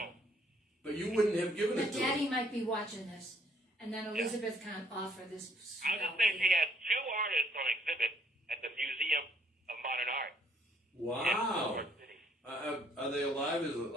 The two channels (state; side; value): normal; both; correlation 0.65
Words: But you wouldn't have given But it to Daddy her. might be watching this, and then Elizabeth can't offer this. I was just saying she has 2 artists on exhibit at the Museum of Modern Art. Wow. In New York City. Are they alive? Is it